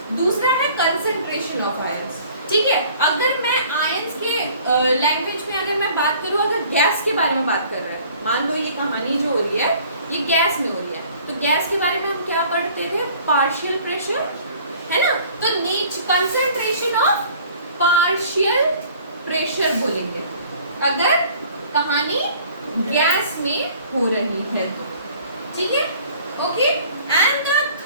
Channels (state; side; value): inverted; both; correlation -0.52